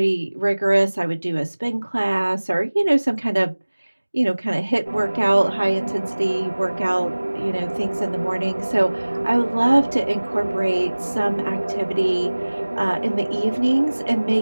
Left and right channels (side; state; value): both; inverted; correlation -1.00